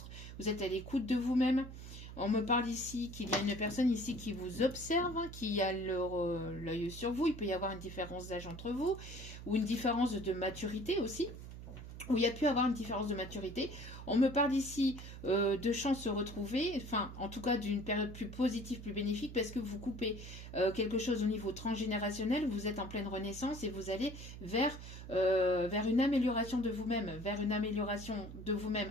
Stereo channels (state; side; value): noise; right; hum, 12 dB below the sound